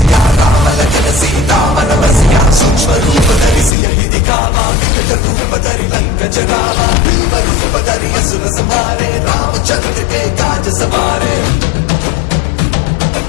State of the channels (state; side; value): drops out; right; at 3.7 s